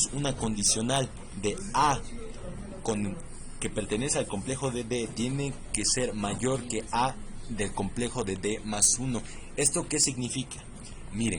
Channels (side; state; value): both; identical; correlation 1.00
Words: una condicional de A que pertenece al complejo de D, tiene que ser mayor que A del complejo de D más 1. ¿Esto qué significa?